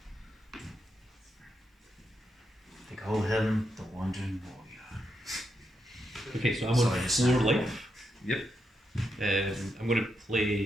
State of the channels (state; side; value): normal; both; correlation 0.83